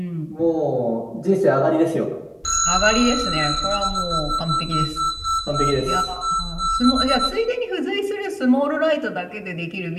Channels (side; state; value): both; identical; correlation 1.00